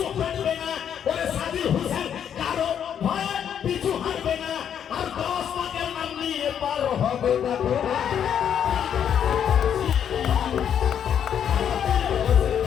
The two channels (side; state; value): right; quieter; 8.8 dB